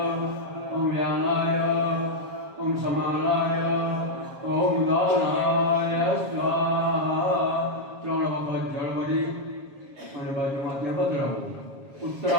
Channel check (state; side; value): late; left; 7.3 ms